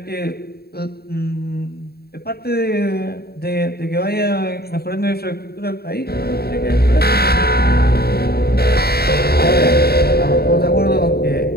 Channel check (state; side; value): late; right; 0.46 ms